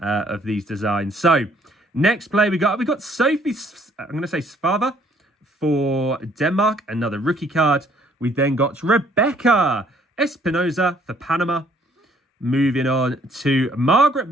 these designs. So next play we got Sophie, I'm going to say Svava for Denmark, another rookie card. We then got Rebecca Espinoza for Panama. Moving on to Margaret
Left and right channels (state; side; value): normal; both; correlation 0.63